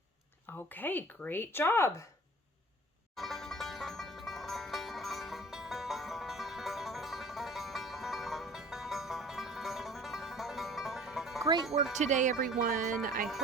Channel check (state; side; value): normal; both; correlation 0.47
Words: Okay, great job. Great work today, everyone. I